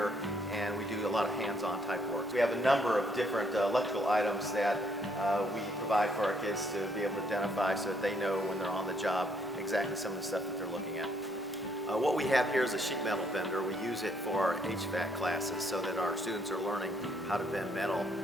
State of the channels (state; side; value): normal; both; correlation 0.70